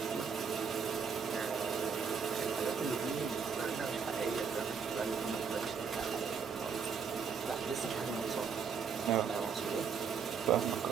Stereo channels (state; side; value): quieter; left; 6.2 dB